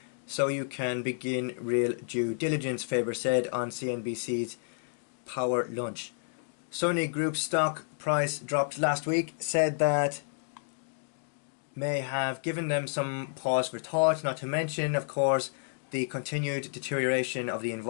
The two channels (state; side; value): silent; right; digital silence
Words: so you can begin real due diligence, Faber said on CNBC's Power Lunch. Sony Group's stock price dropped last week, said that may have given them some pause for thought, not to mention, of course, the continued deterioration of the